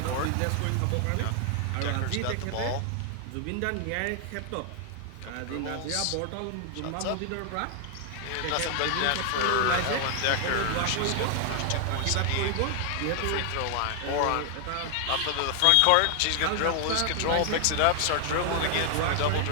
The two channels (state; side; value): different; both; correlation 0.00